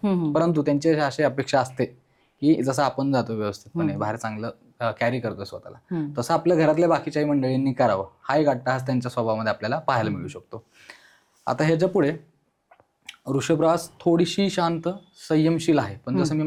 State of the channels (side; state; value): both; identical; correlation 1.00